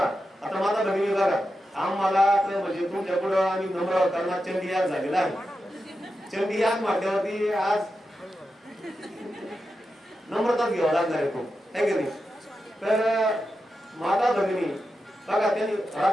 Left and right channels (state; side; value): normal; both; correlation 0.89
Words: आता माझा बहिणी बघा, आम्हाला म्हणजे तुमच्या पुढे आम्ही नम्र करणार चंडी याग झालेला आहे. चंडी याग म्हटल्यावरती आज नम्रताच घ्यावा लागणार आहे खूप, है की नाही. तर माता भगिनी बघा, त्यांनी